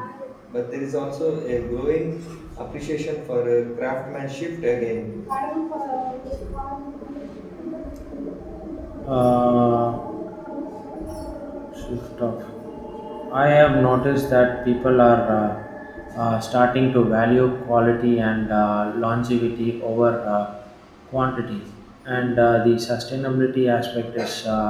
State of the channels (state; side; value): identical; both; correlation 1.00